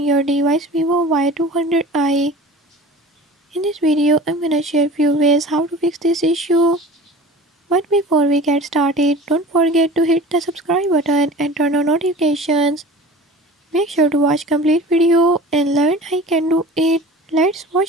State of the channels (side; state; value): both; normal; correlation 0.40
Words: device Vivo Y200i. In this video, I'm gonna share few ways how to fix this issue. But before we get started, don't forget to hit the subscribe button and turn on notifications. Make sure to watch complete video and learn how you can do it. Let's